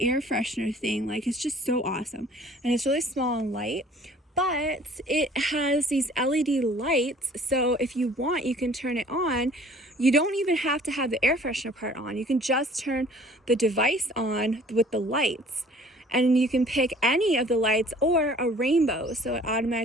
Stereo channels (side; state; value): both; normal; correlation 0.53